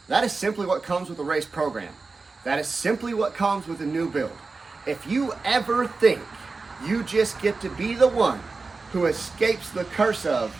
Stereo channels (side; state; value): left; quieter; 4.0 dB